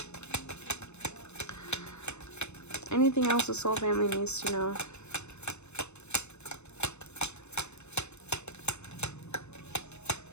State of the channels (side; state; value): right; late; 0.81 ms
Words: Anything else the soul family needs to know?